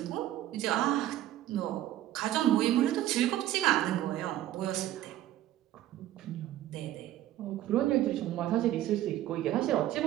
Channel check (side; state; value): left; quieter; 13.5 dB